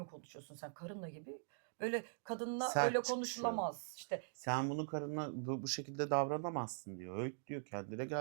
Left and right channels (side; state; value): left; silent; digital silence